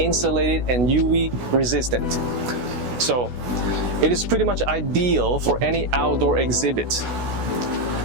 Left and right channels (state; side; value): late; left; 16 ms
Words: and UV resistant. So it is pretty much ideal for any outdoor exhibit.